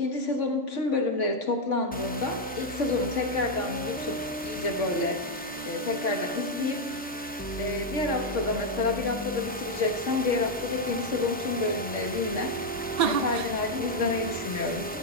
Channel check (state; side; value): normal; both; correlation 0.01